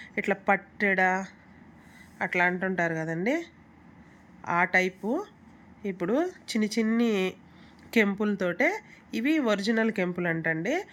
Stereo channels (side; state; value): both; identical; correlation 1.00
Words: ఇట్లా పట్టెడ అట్లా అంటుంటారు కదండి, ఆ టైపు. ఇప్పుడు చిన్ని కెంపులతోటే ఇవి ఒరిజినల్ కెంపులు అంటండి.